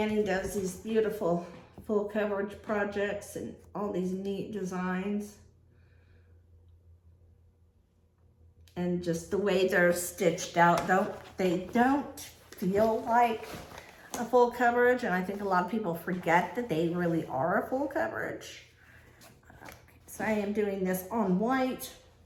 does these beautiful full coverage projects and all these neat designs. And just the way they're stitched out, they don't feel like a full coverage, and I think a lot of people forget that they really are a full coverage. So I am doing this on white.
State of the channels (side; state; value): both; identical; correlation 1.00